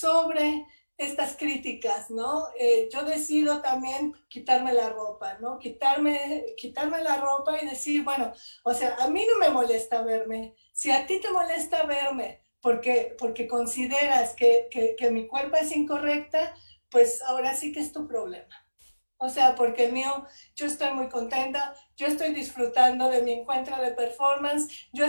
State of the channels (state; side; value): inverted; both; correlation -1.00